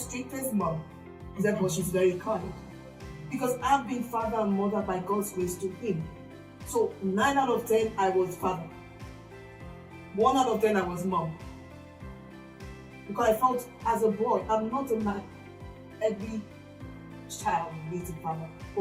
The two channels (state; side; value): identical; both; correlation 1.00